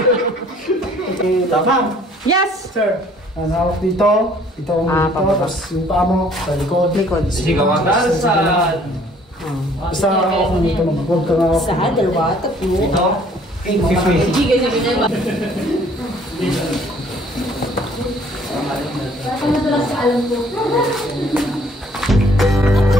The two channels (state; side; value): normal; both; correlation 0.58